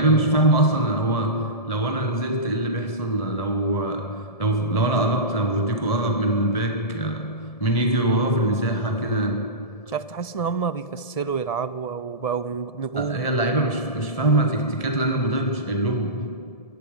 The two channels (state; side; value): late; right; 1.7 ms